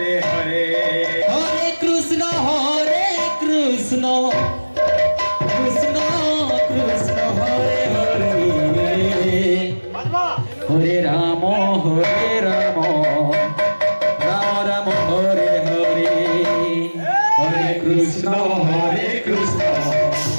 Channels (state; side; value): inverted; both; correlation -1.00